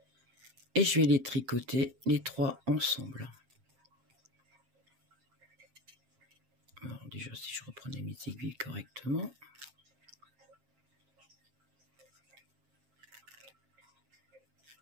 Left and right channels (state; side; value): late; left; 7.5 ms